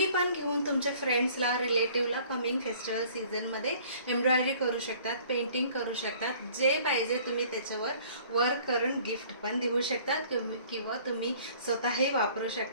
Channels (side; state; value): both; inverted; correlation -0.53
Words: पण घेऊन तुमच्या फ्रेंड्सला, रिलेटिव्हला कमिंग फेस्टिवल सीझनमध्ये एम्ब्रॉयडरी करू शकतात, पेंटिंग करू शकतात. जे पाहिजे तुम्ही त्याच्यावर वर्क करून गिफ्ट पण देऊ शकतात, किंवा तुम्ही स्वतःही वापरू